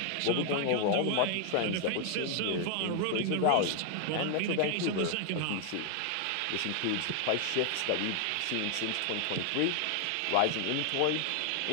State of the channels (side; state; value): both; different; correlation 0.00